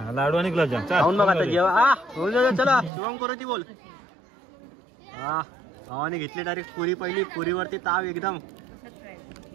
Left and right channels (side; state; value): left; drops out; at 2.9 s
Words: लाडू आणि गुलाबजाम खाऊन बघा आता जेवा. चला शुभम करू ती बोल. हा भावाने घेतली डायरेक्ट पुरी, पहिली पुरीवरती ताव एकदम